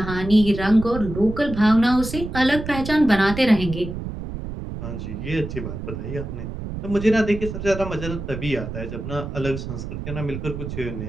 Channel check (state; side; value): noise; right; rumble, 7 dB below the sound